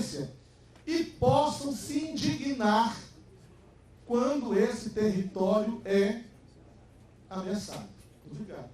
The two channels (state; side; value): identical; both; correlation 1.00